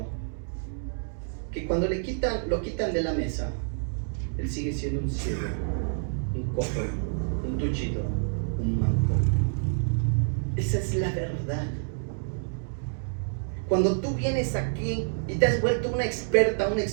que cuando lo quitan de la mesa, Él sigue siendo un ciego, un cojo, un tullido, un manco. Esa es la verdad. Cuando tú vienes aquí y te has vuelto una experta, un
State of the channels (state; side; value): silent; left; digital silence